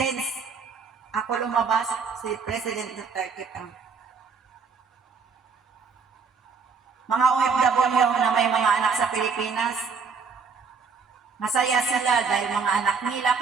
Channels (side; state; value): left; quieter; 5.5 dB